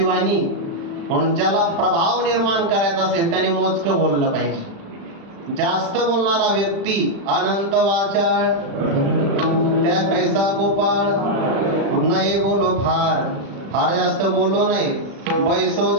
वाणी म्हणून ज्याला प्रभाव निर्माण करायचा असेल त्याने मोजकं बोललं पाहिजे. जास्त बोलणारा व्यक्ती अनंत वाचाळ त्या कैसा गोपाळ नाही बोलो फार. फार जास्त बोलू नये. बैसो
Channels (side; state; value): left; late; 36 ms